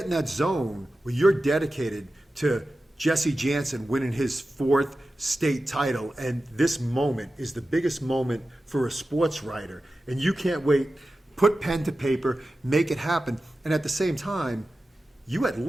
in that zone where you're dedicated to Jesse Jansen winning his 4th state title, and this moment is the biggest moment for a sports writer, and you can't wait. Put pen to paper, make it happen. And at the same time, you had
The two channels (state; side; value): normal; both; correlation 0.93